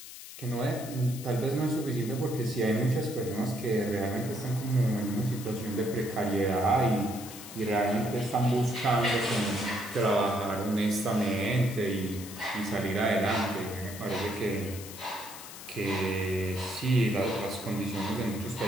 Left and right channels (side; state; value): left; noise; hiss, 13 dB below the sound